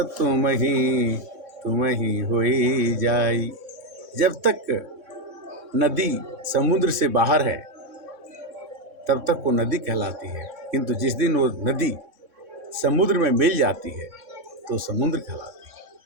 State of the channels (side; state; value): left; late; 3.6 ms